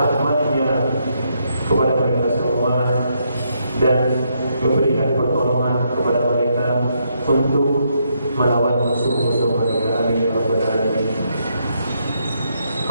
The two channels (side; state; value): both; inverted; correlation -0.77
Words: kepada mereka semua dan memberikan pertolongan kepada mereka untuk melawan musuh-musuh mereka. Amin ya rabbal alamin.